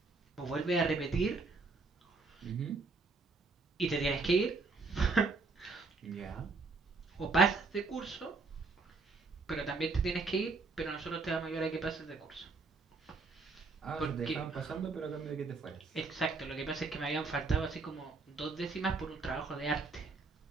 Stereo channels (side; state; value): left; quieter; 4.1 dB